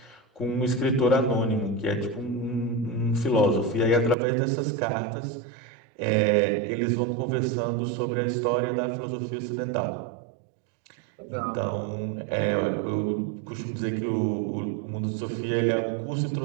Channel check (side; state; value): left; drops out; at 4.2 s